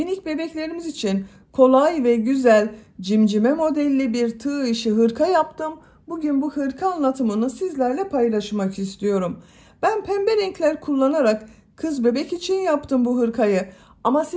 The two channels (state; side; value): identical; both; correlation 1.00